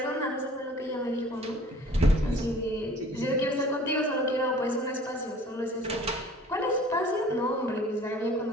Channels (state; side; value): normal; both; correlation 0.49